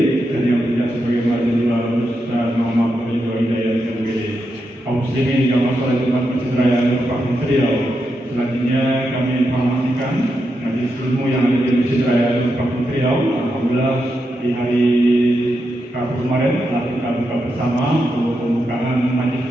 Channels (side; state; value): both; normal; correlation 0.85